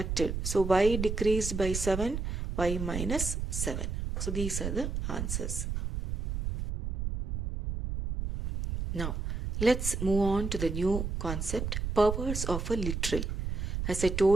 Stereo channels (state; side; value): noise; right; rumble, 3 dB below the sound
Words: So y decreased by 7, y minus 7. So these are the answers. Now, let's move on to the new concept, powers of a literal. As I